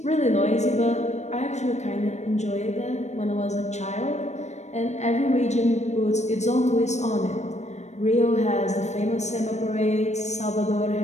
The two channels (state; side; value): late; right; 0.33 ms